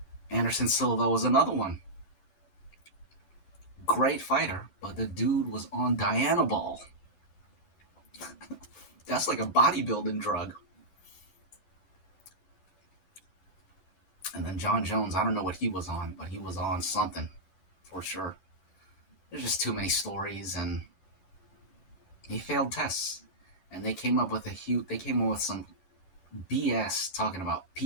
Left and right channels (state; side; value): late; right; 11 ms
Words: Anderson Silva was another one. Great fighter, but the dude was on Dianabol. That's like a bodybuilding drug. And then John Jones, I don't know what he was on, but he was on something for sure. There's just too many stories, and he failed tests. And they came up with some BS talking about